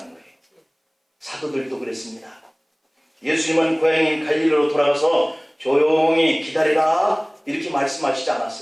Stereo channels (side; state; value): both; identical; correlation 1.00